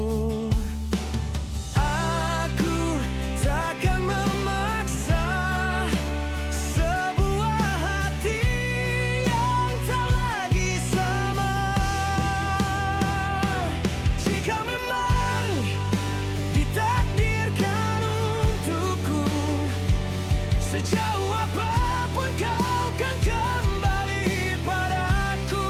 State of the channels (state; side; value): identical; both; correlation 1.00